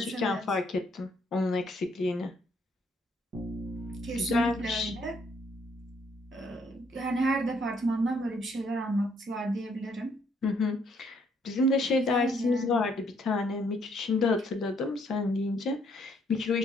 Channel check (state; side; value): normal; both; correlation 0.69